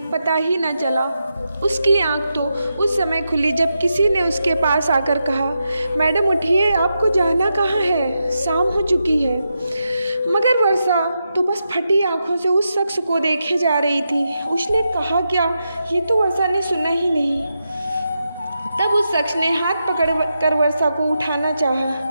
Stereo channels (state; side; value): inverted; both; correlation -0.86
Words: पता ही न चला। उसकी आंख तो उस समय खुली जब किसी ने उसके पास आकर कहा, मैडम उठिए, आपको जाना कहाँ है, शाम हो चुकी है। मगर वर्षा तो बस फटी आंखों से उस शख्स को देखे जा रही थी। उसने कहा क्या, ये तो वर्षा ने सुना ही नहीं। तब उस शख्स ने हाथ पकड़ कर वर्षा को उठाना चाहा।